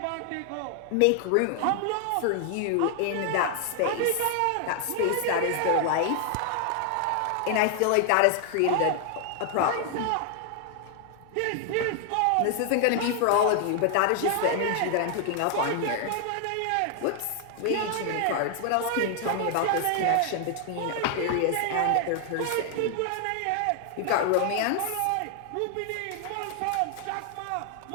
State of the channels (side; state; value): both; different; correlation 0.00